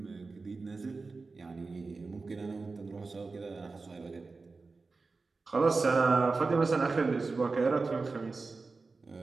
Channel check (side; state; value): left; quieter; 4.0 dB